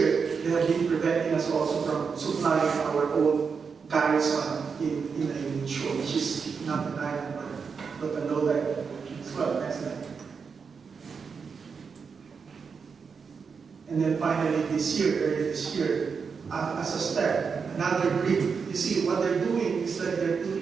they have been preventing us also from supplying our own garrison in the shore, which is not an island, but a low tide as well. Next slide. And then finally, early this year, as a step, another brick. You see, what they're doing is that they're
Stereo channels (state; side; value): quieter; left; 5.7 dB